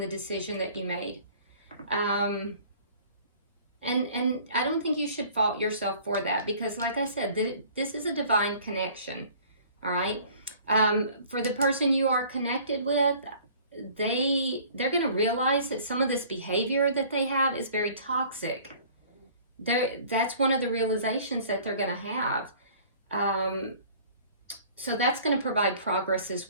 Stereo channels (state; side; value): inverted; both; correlation -0.51